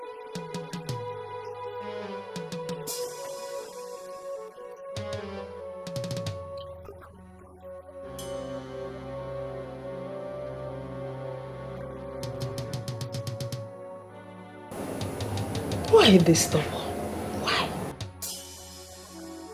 giving me the impression that you don't trust me? Do you think I would do anything to implicate you? Do you think I'm a daft? Are you giving it to me or not? Why this stubborn? Why? Just as stubborn as the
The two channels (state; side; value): identical; both; correlation 1.00